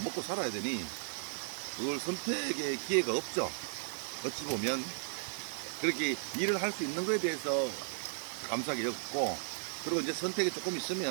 살아야 되니 그걸 선택의 기회가 없죠. 어찌 보면 그렇게 일을 할 수 있는 거에 대해서 감사하게 여겼고, 그리고 이제 선택이 조금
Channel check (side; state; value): left; silent; digital silence